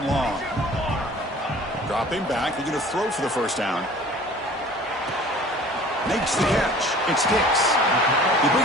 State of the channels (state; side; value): normal; both; correlation 0.47